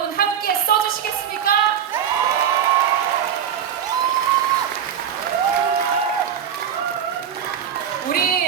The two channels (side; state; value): left; quieter; 8.8 dB